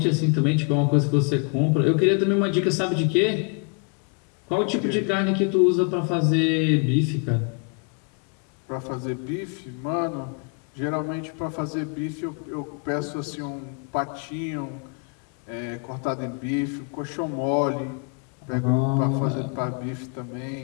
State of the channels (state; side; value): quieter; right; 37.9 dB